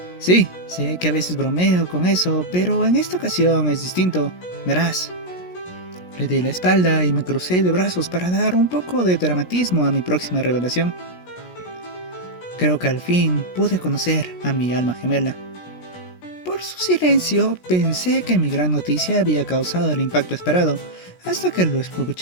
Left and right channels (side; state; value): right; late; 17 ms